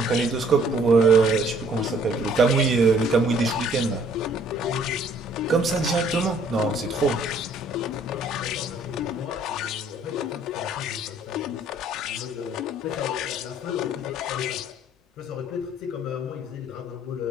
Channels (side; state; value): both; normal; correlation 0.60